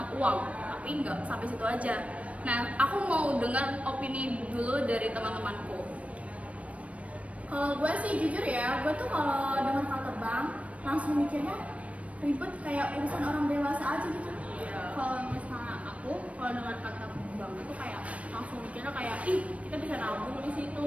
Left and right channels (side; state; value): left; late; 0.065 ms